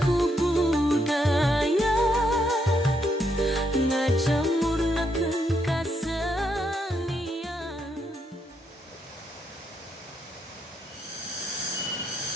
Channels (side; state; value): both; normal; correlation 0.77